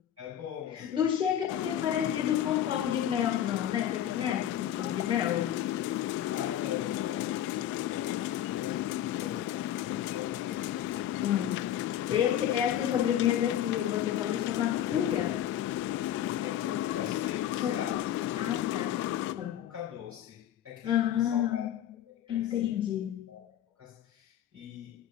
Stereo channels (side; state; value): right; quieter; 11.1 dB